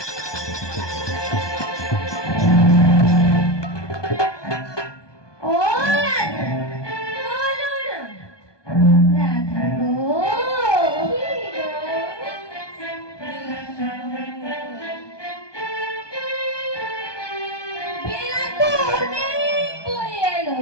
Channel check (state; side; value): late; right; 1.2 ms